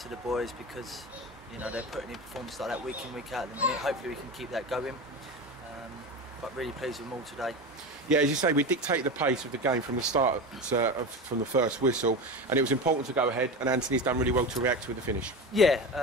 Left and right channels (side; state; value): both; normal; correlation 0.25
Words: the boys because, you know, they're putting in performances like that week in, week out at the minute. Hopefully we can keep that going. But really pleased with them all today. Yeah, as you say, we dictated the pace of the game from the start, from the first whistle, and it was important to go ahead, and Anthony's done really well to react with the finish.